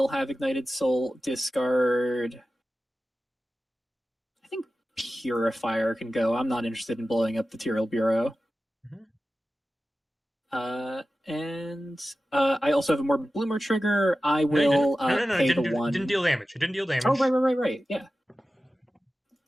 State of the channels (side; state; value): both; normal; correlation 0.94